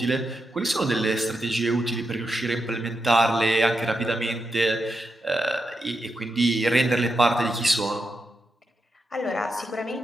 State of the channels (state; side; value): normal; both; correlation 0.86